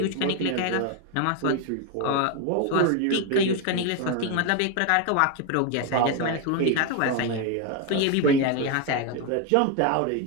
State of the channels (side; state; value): both; different; correlation 0.02